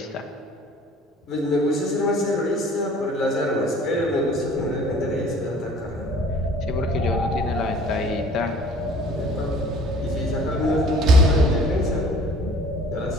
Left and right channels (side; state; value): both; normal; correlation 0.50